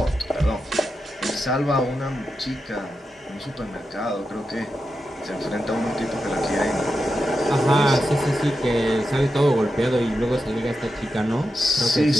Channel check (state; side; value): normal; both; correlation 0.88